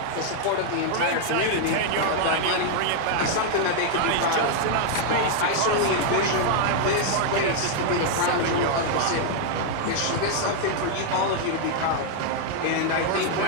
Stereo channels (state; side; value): different; both; correlation 0.00